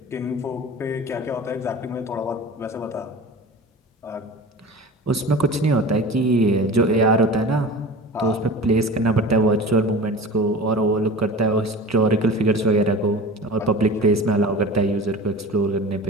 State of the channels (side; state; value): both; normal; correlation 0.35